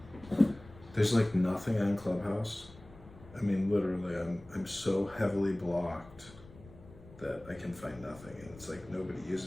there's like nothing on Clubhouse. I mean, literally, I'm so heavily blocked that I can find nothing, and it's like nobody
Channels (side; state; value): left; noise; rumble, 20 dB below the sound